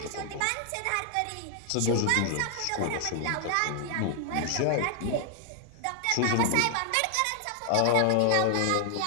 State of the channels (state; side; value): different; both; correlation 0.00